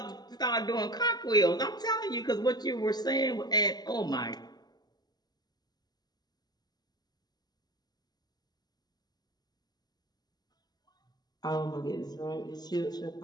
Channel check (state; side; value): late; right; 0.20 ms